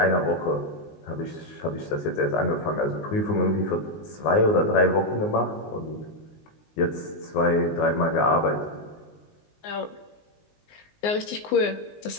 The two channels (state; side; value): late; right; 19 ms